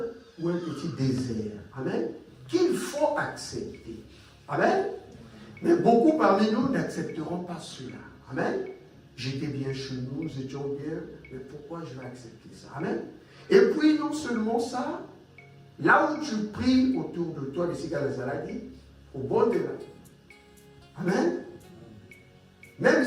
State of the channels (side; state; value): both; identical; correlation 1.00